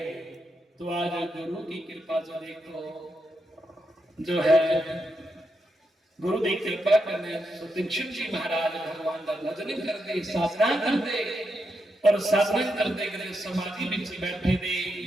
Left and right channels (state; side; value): normal; both; correlation 0.83